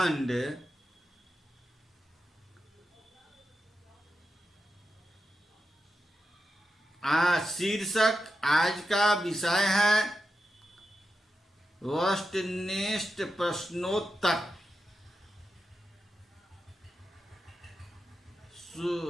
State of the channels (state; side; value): normal; both; correlation 0.90